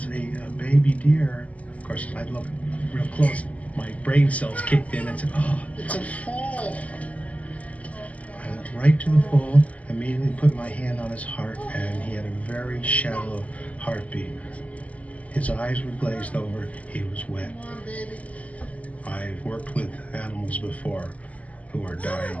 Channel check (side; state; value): right; late; 0.071 ms